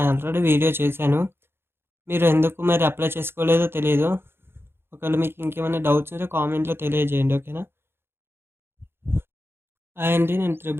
ఆల్రెడీ వీడియో చేశాను. మీరు ఎందుకు మరి అప్లై చేసుకోలేదో తెలియదు. ఒకవేళ మీకు ఇంకేమైనా డౌట్స్ ఉంటే కామెంట్లో తెలియజేయండి. ఓకేనా? అండి, నేను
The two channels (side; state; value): left; late; 0.11 ms